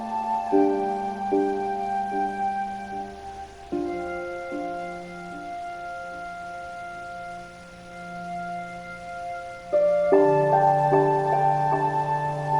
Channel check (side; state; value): both; identical; correlation 1.00